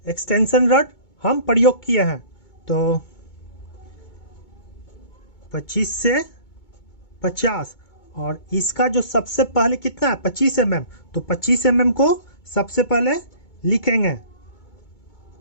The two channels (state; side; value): late; right; 2.2 ms